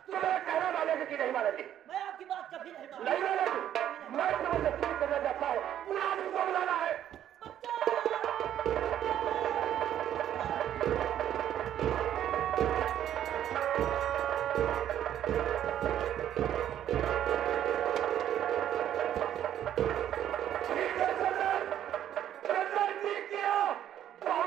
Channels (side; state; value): left; quieter; 10.9 dB